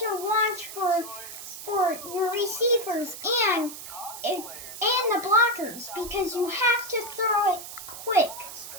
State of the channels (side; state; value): right; noise; hiss, 11 dB below the sound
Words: watch for your receivers and the blockers because you have to throw it quick.